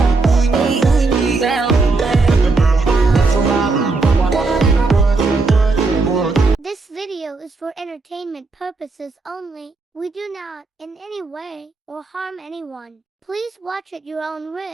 This video is for entertainment purposes only. We do not, in any way, or harm anyone. Please watch at your own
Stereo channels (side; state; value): left; quieter; 3.8 dB